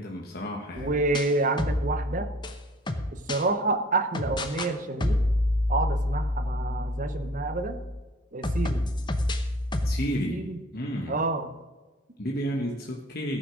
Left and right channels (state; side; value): normal; both; correlation 0.50